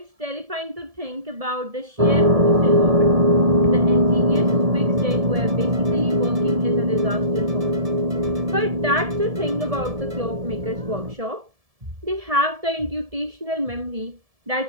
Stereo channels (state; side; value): late; left; 1.7 ms